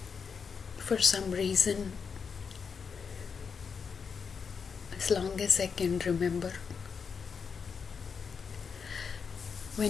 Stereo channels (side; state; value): right; quieter; 6.0 dB